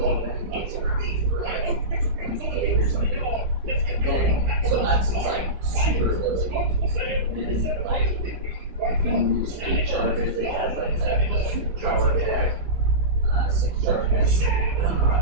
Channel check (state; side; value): late; left; 17 ms